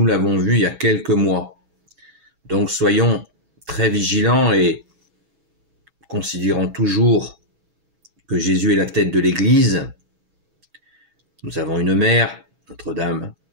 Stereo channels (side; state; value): left; late; 6.1 ms